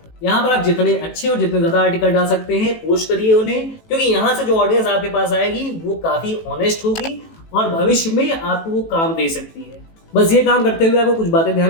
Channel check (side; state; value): right; late; 18 ms